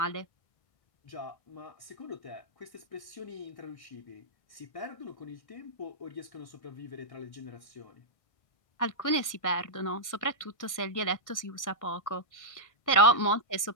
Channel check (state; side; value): late; right; 1.6 ms